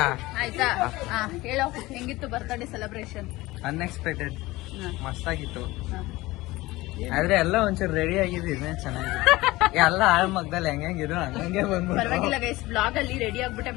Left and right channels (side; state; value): right; quieter; 19.5 dB